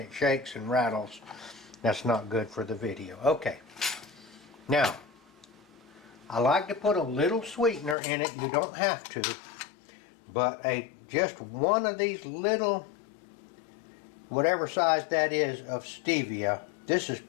shakes and rattles. That's not good for the video. Okay, now I like to put a little sweetener in it. You don't have to, but just one of these little, whatever size that is, of stevia. This is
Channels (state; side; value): drops out; right; at 8.0 s